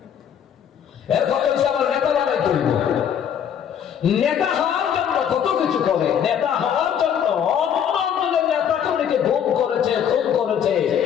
এর কথা হচ্ছে আমার নেতা বানাই তুলব। নেতা হওয়ার জন্য কত কিছু করে। নেতা হওয়ার জন্য অন্যদের নেতা কর্মীকে ভোগ করেছে, খুন করেছে,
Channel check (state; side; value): quieter; right; 8.7 dB